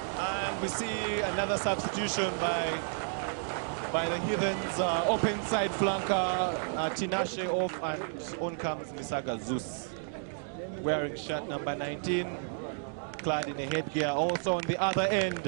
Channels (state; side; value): silent; left; digital silence